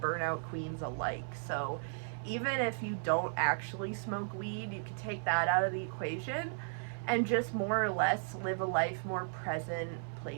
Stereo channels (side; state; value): left; silent; 54 dB below the other